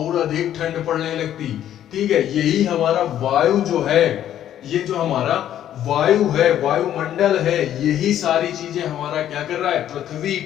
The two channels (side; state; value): right; quieter; 11.2 dB